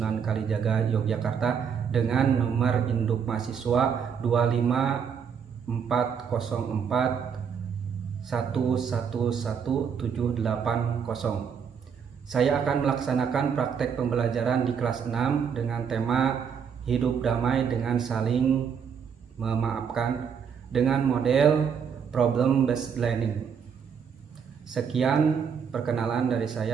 Kalijaga, Yogyakarta, dengan nomor induk mahasiswa 25404111780. Saya akan melaksanakan praktek pembelajaran di kelas 6 dengan tema hidup damai dengan saling memaafkan dengan model problem based learning. Sekian perkenalan dari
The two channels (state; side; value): quieter; left; 7.1 dB